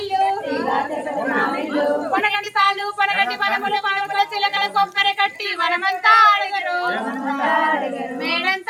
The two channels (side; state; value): both; identical; correlation 1.00